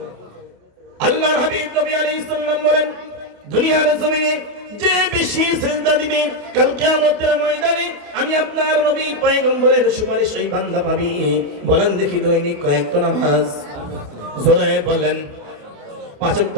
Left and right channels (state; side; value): late; left; 28 ms